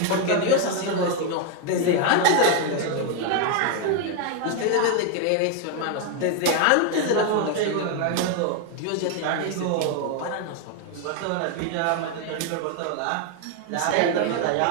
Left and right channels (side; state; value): both; different; correlation 0.01